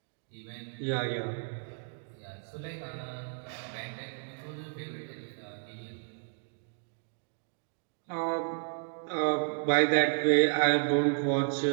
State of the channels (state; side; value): silent; left; 56 dB below the other